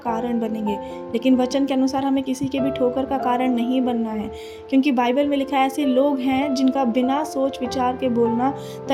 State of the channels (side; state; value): both; identical; correlation 1.00